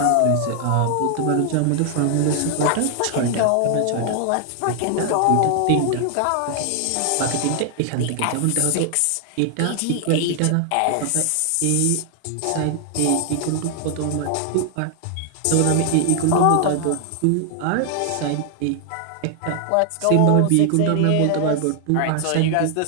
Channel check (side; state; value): both; different; correlation 0.00